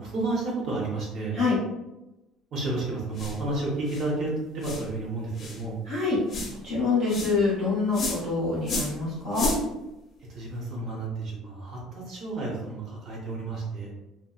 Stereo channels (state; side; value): normal; both; correlation 0.44